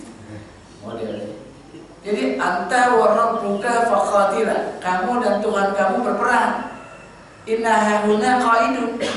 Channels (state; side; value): identical; both; correlation 1.00